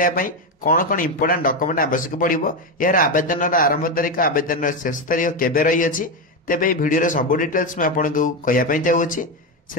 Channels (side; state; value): both; normal; correlation 0.11